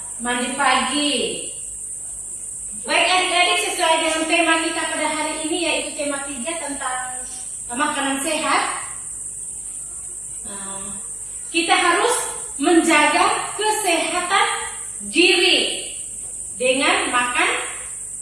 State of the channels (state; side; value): noise; left; hum, 25 dB below the sound